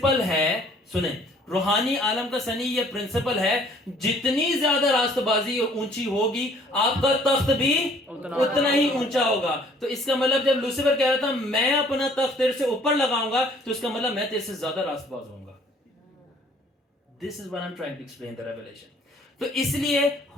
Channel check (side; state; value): both; normal; correlation 0.57